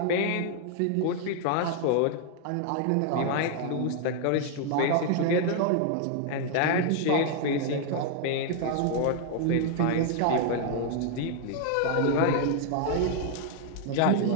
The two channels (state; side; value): different; both; correlation 0.00